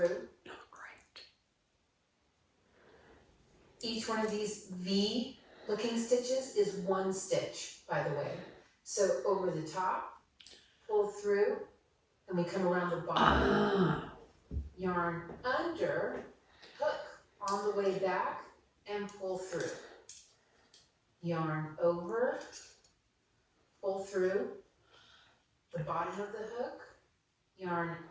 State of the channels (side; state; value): both; identical; correlation 1.00